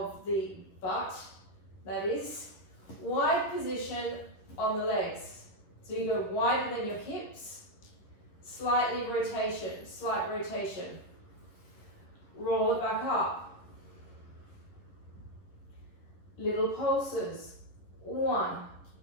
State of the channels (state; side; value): late; right; 11 ms